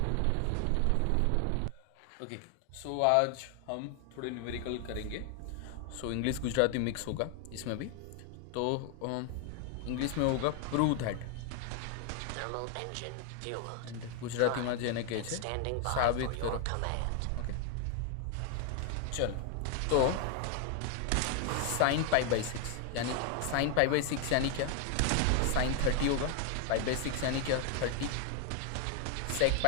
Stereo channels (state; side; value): different; both; correlation 0.00